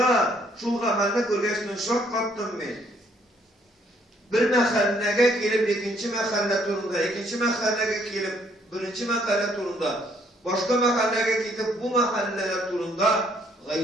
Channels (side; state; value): both; normal; correlation 0.66